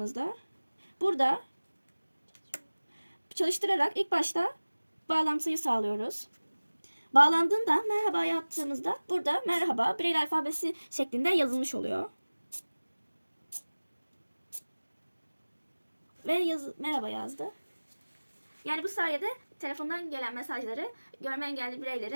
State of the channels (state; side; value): inverted; both; correlation -1.00